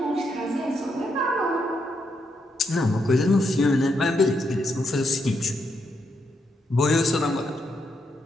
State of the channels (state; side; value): normal; both; correlation 0.79